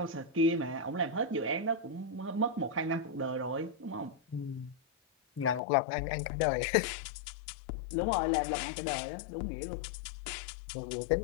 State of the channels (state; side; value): drops out; right; at 5.6 s